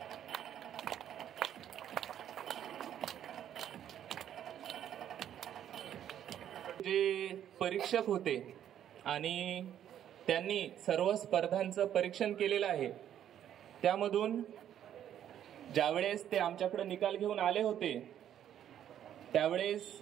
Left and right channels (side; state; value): left; quieter; 10.4 dB